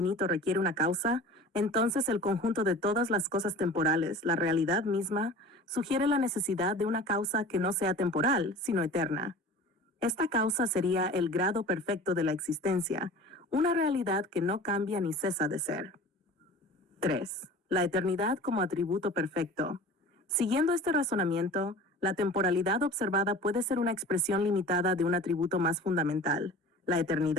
requiere una causa, entonces el conjunto de todas las cosas temporales, la realidad misma, sugiere la necesidad de una causa que no sea temporal, sino eterna. Esta causa sería el grado perfecto de la existencia, una realidad que no cambia ni cesa de ser. 3. La eternidad como atributo perfecto. Siguiendo este razonamiento, la temporalidad observada puede ser una expresión limitada de un atributo más fundamental, la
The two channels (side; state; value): both; normal; correlation 0.40